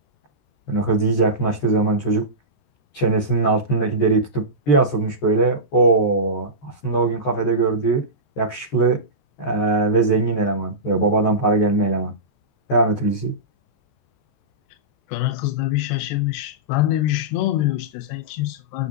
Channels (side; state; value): right; late; 14 ms